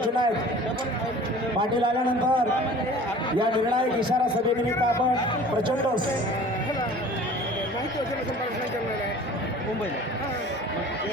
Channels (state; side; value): normal; both; correlation 0.45